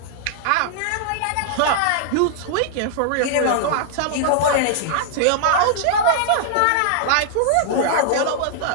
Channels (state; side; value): different; both; correlation -0.01